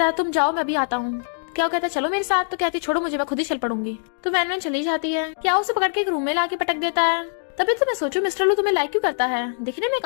है तुम जाओ मैं भी आता हूँ। क्या कहता है चलो मेरे साथ, तो कहती छोड़ो मुझे मैं खुद ही चल पड़ूंगी। तो वैन चली जाती है। क्या उसे पकड़ के एक रूम में लाके पटक देता है। तभी तो मैं सोचूं मिस्टर लू तुम्हें लाइक क्यों करता है, दिखने में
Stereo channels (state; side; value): silent; right; digital silence